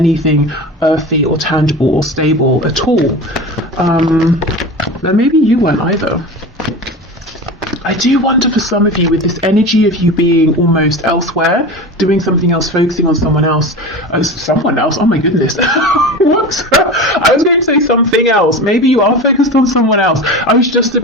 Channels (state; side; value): normal; both; correlation 0.30